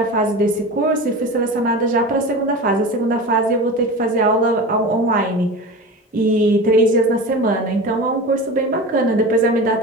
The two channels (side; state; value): both; normal; correlation 0.31